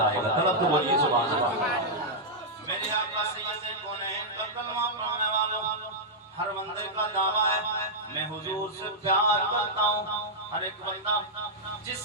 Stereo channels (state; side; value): normal; both; correlation -0.07